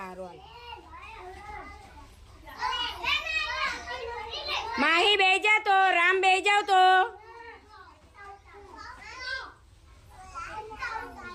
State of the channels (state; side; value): identical; both; correlation 1.00